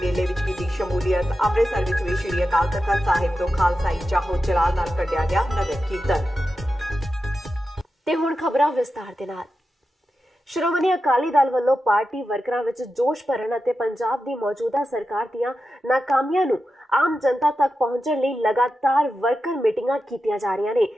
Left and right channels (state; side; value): normal; both; correlation 0.91